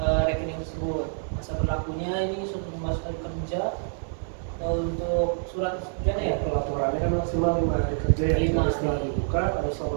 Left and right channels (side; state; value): left; silent; digital silence